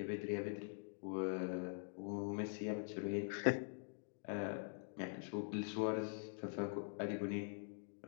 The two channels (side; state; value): right; silent; digital silence